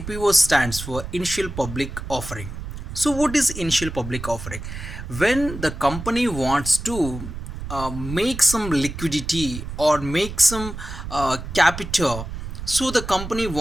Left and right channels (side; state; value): right; noise; rumble, 9 dB below the sound